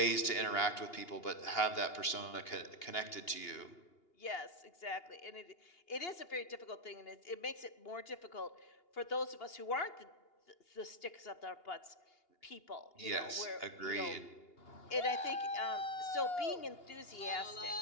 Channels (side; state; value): right; late; 2.8 ms